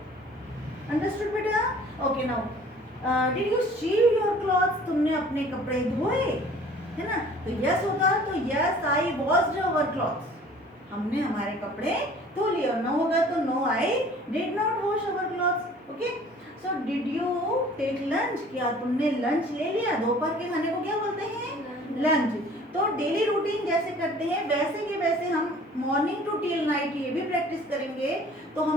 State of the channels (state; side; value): normal; both; correlation 0.50